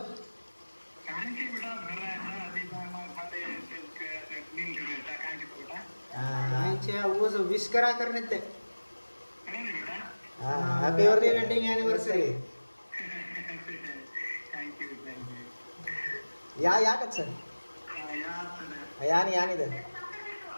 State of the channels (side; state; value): both; inverted; correlation -1.00